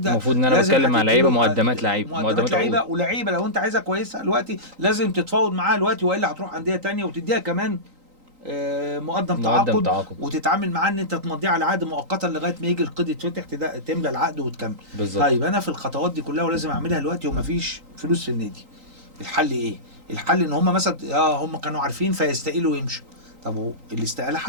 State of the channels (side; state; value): left; late; 3.9 ms